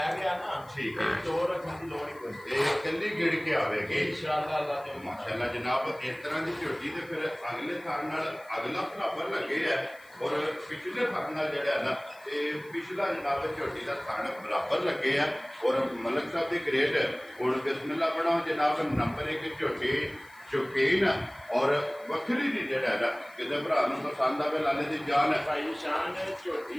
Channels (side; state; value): left; noise; hiss, 27 dB below the sound